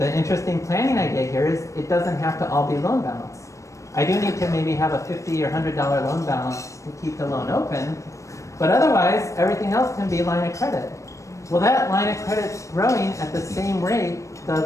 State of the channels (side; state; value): right; late; 0.15 ms